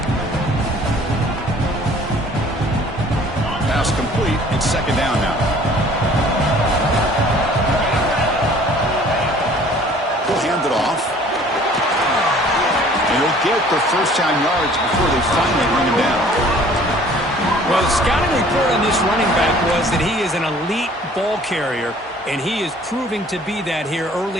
Pass complete. It's 2nd down now. Hand it off. And he'll get the 1st down yards before they finally bring him down. Well, the scouting report on this running back was that he is an elite ball carrier, and he is proving to be that here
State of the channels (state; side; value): normal; both; correlation 0.53